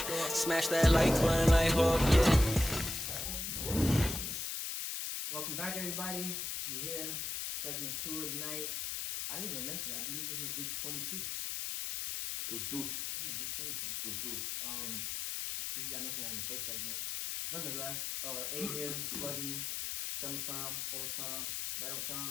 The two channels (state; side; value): noise; left; hiss, 3 dB below the sound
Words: Smash that like button like Hawk, yeah. Welcome back, everybody. We here, segment 2 of the night. I didn't even mention it. I believe this is week 22. Deuce. Yeah, week 22. Deuce. Usually I mention that in the first segment. Nonetheless, A here, sluggy, summertime, all the time, right on